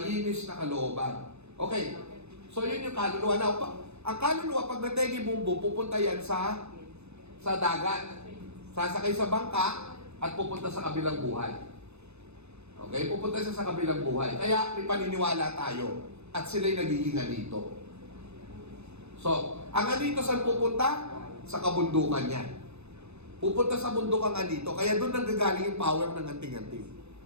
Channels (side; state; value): left; late; 0.81 ms